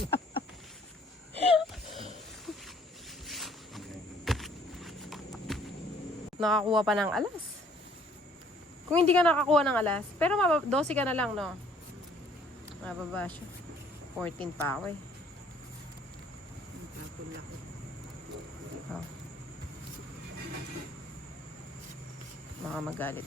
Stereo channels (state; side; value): normal; both; correlation 0.60